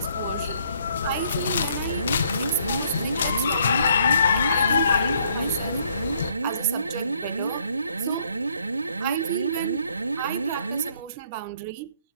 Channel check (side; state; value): both; inverted; correlation -0.66